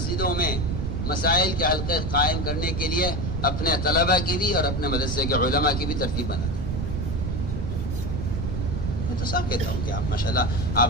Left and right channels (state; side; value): noise; right; rumble, 2 dB below the sound